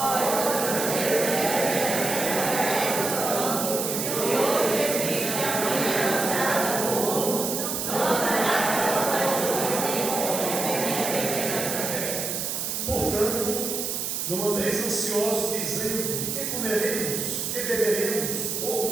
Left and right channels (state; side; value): noise; right; hiss, 2 dB below the sound